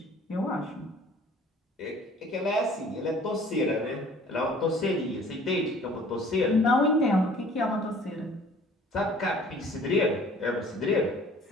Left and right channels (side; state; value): both; normal; correlation 0.51